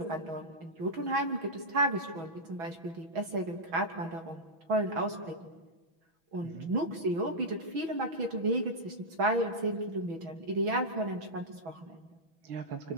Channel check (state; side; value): late; left; 6.2 ms